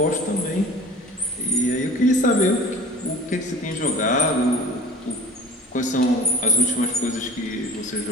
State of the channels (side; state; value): both; normal; correlation 0.41